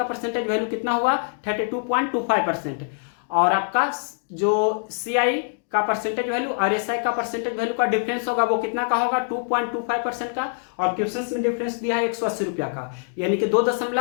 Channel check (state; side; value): silent; right; digital silence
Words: परसेंटेज वैल्यू कितना हुआ 32.25%, और आपका जो CI का परसेंटेज वैल्यू और SI का परसेंटेज वैल्यू का डिफरेंस होगा वो कितना का होगा 2.25% का, और क्वेश्चन में डिफरेंस दिया है 180 रुपया का, यानी कि